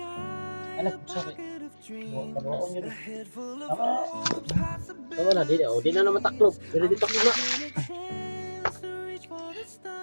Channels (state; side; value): inverted; both; correlation -1.00